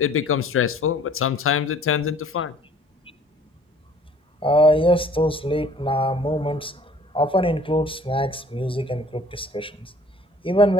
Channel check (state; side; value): normal; both; correlation 0.53